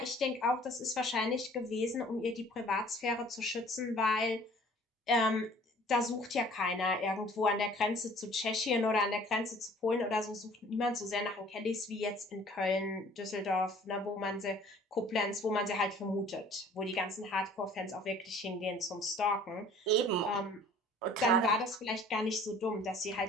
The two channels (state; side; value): normal; both; correlation 0.52